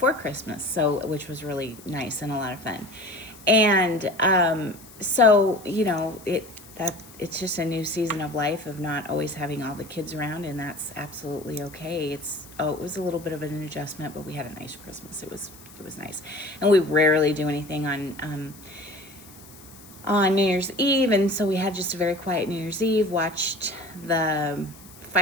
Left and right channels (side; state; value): left; noise; hiss, 21 dB below the sound